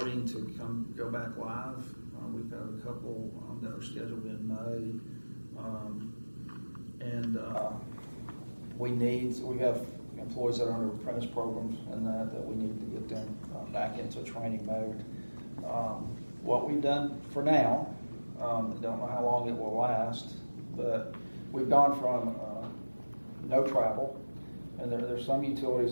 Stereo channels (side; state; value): both; inverted; correlation -1.00